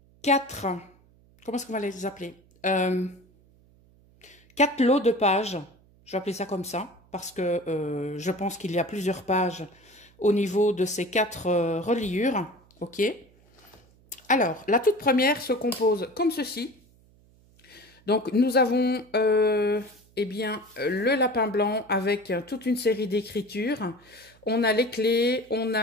4, comment est-ce qu'on va les appeler 4 lots de pages. Je vais appeler ça comme ça, parce que je pense qu'il y a plusieurs pages au niveau de ces 4 reliures. Ok. Alors, la toute première se compose comme ceci. Donc, nous avons eh bien, le lapin blanc avec toute une série d'écritures. On a les clés, on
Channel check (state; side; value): noise; right; hum, 29 dB below the sound